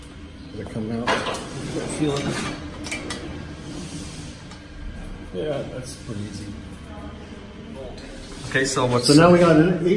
They're coming out. Feel it. Yeah, that's pretty easy. Okay, so what's So now we got an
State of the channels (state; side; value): identical; both; correlation 1.00